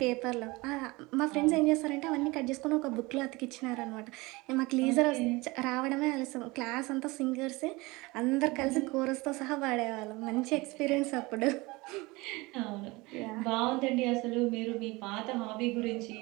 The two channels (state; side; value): quieter; left; 23.2 dB